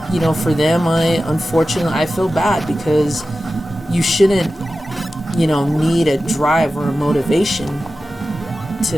for them, unfortunately, I feel bad because you shouldn't, need a drive or a motivation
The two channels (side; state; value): both; normal; correlation 0.94